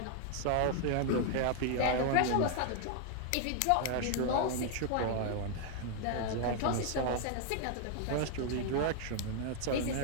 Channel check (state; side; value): different; both; correlation 0.00